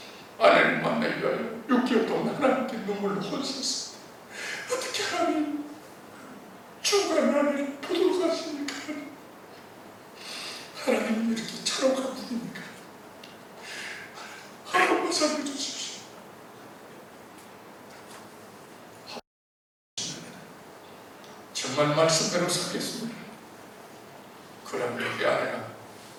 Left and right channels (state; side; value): identical; both; correlation 1.00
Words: 아내를 만나기 위하여 6개월 동안 하나님께 눈물로 혼셨습니다. 어떻게 하나님 죽어가는 아내를 보도록 하십니까? 하나님은 이렇게 차로가 분입니까? 한 번만 살려주십시오. 정말 말씀대로 살겠습니다. 그러면 우리 아내가